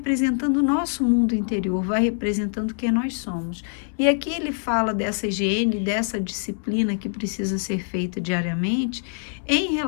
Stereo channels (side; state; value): right; silent; 61 dB below the other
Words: o nosso mundo interior, vai representando quem nós somos. E aqui ele fala dessa higiene, dessa disciplina que precisa ser feita diariamente em